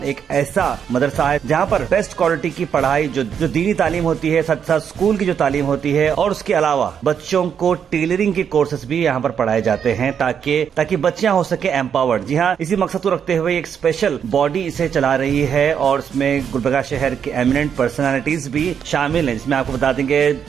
एक ऐसा मदरसा है जहां पर बेस्ट क्वालिटी की पढ़ाई जो दीनी तालीम होती है, साथ साथ स्कूल की जो तालीम होती है और उसके अलावा बच्चों को टेलरिंग के कोर्सेज भी यहाँ पर पढ़ाए जाते हैं ताकि बच्चियां हो सके एम्पावर्ड। जी हाँ, इसी मकसद को रखते हुए एक स्पेशल बॉडी इसे चला रही है और इसमें गुलबर्गा शहर के एमिनेंट पर्सनालिटीज भी शामिल हैं, जिसमें आपको बता देंगे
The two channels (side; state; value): left; quieter; 7.8 dB